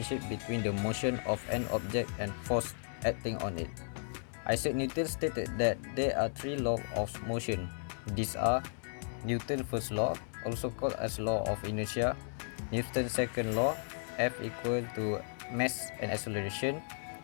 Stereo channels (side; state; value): right; silent; digital silence